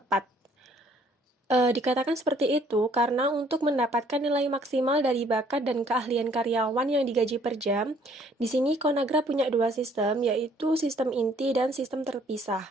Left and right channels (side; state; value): both; normal; correlation 0.60